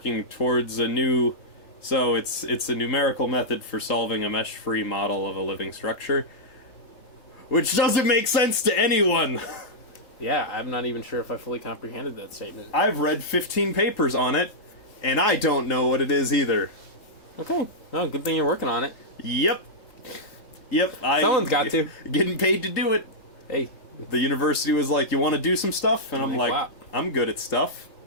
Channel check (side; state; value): right; late; 3.8 ms